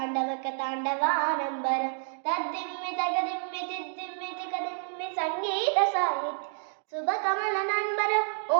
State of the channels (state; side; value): silent; left; 59 dB below the other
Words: तद्दिम्मि तगदिम्मि तिद्दिम्मि तिकदिम्मि सङ्गीतसाहित्य शुभकमलनम्बर